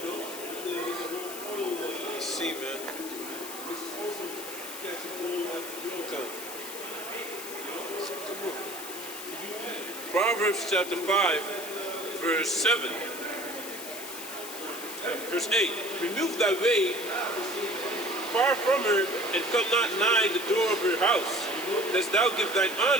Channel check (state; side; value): noise; left; hiss, 10 dB below the sound